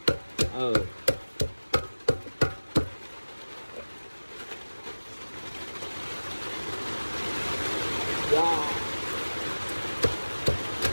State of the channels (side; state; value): both; inverted; correlation -1.00